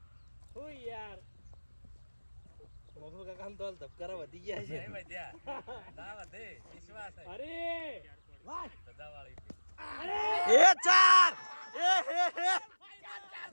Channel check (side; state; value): both; inverted; correlation -1.00